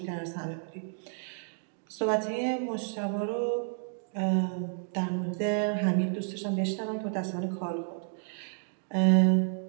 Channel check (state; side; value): silent; left; digital silence